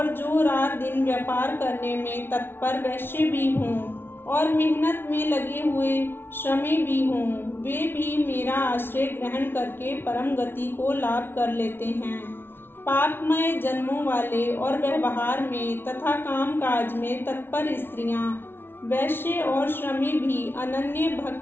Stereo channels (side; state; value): right; late; 0.11 ms